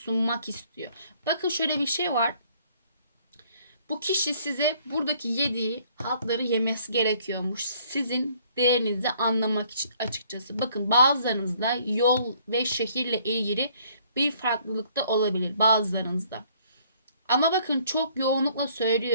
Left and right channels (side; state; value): both; inverted; correlation -0.61